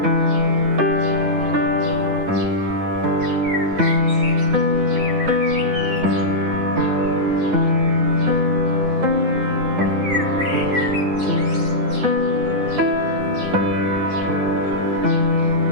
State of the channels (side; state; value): left; late; 9.7 ms